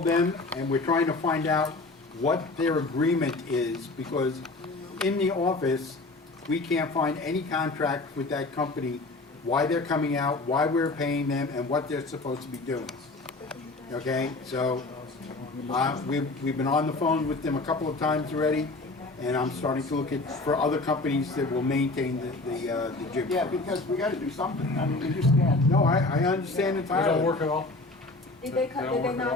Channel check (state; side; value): quieter; right; 3.2 dB